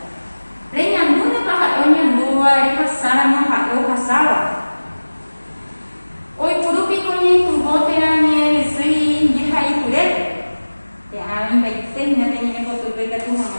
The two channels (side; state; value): both; inverted; correlation -1.00